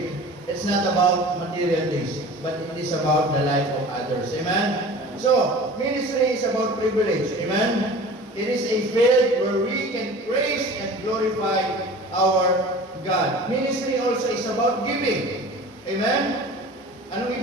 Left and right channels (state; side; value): normal; both; correlation 0.40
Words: it's not about material things, but it is about the life of others. Amen? So, ministry is about privilege. Amen? It is a field where we can praise and glorify our God. Ministry also is about giving. Amen? Anong